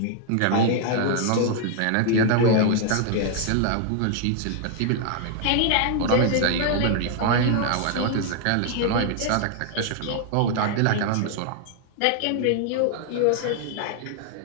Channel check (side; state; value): both; different; correlation 0.00